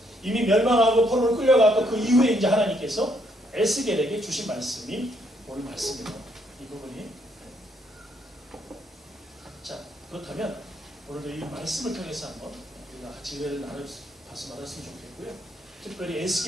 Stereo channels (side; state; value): both; normal; correlation 0.72